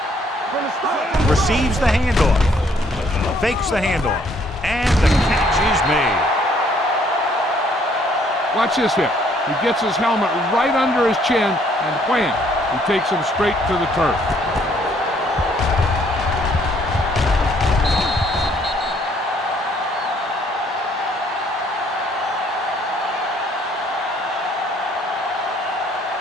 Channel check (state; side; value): normal; both; correlation 0.64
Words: From the start. Receives the handoff. Fakes the handoff. And the catch is made. Watch this here. He gets his helmet right under his chin, and wham, he takes him straight to the turf.